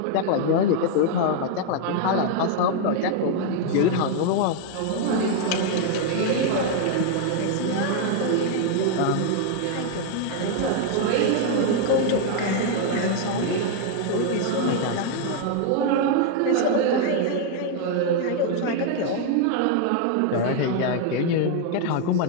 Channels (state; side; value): different; both; correlation 0.00